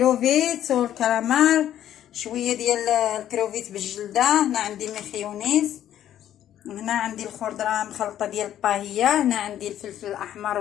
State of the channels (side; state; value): right; quieter; 11.4 dB